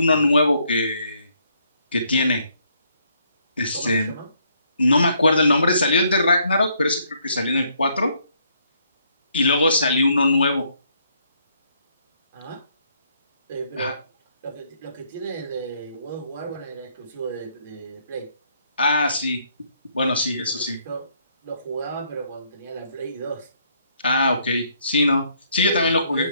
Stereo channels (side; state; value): both; inverted; correlation -0.70